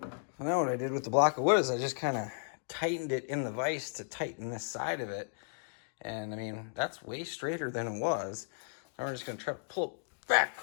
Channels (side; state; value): right; silent; digital silence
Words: So now what I did with the block of wood is I just kind of tightened it in the vise to tighten this side of it. And I mean, that's way straighter than it was. Now we're just gonna try to pull it back